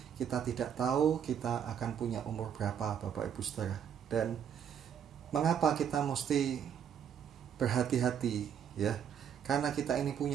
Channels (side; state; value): left; quieter; 8.5 dB